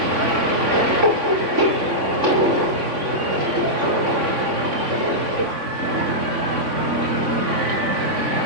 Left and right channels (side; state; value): left; late; 3.5 ms